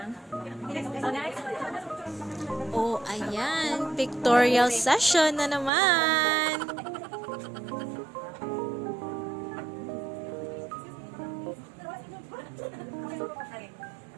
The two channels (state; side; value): drops out; left; at 5.7 s